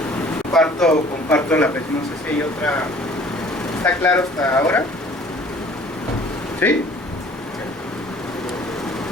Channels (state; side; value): normal; both; correlation 0.52